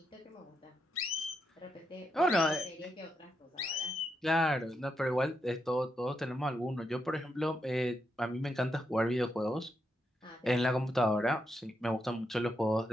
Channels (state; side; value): normal; both; correlation 0.82